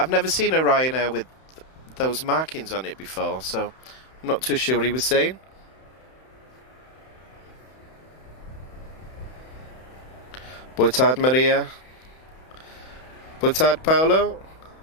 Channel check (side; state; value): right; late; 31 ms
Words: never seen a Ryanair with those markings on it before, so I'm not too sure what he was saying. Boa tarde, Maria. Boa tarde, Paulo.